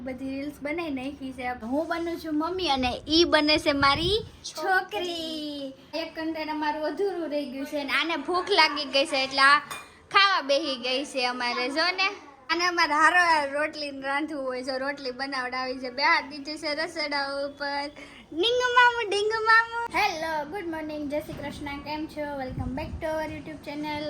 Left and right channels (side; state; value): both; identical; correlation 1.00